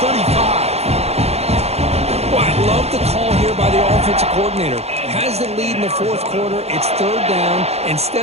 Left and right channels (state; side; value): late; left; 0.30 ms